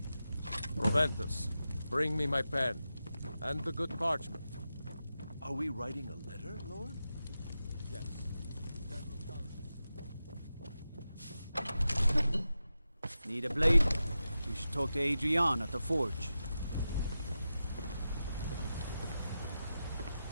Proventus, bring me my pen. And the good parchment. Are we writing a letter, Lord? Yes. Need a blade? You should talk to Adrian at the forge.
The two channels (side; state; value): both; inverted; correlation -0.91